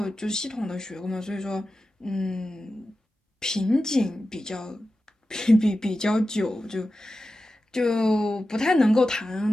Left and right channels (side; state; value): both; normal; correlation 0.93